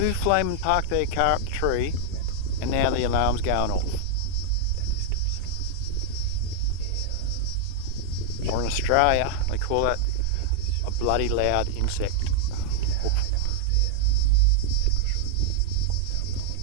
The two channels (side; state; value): both; different; correlation -0.01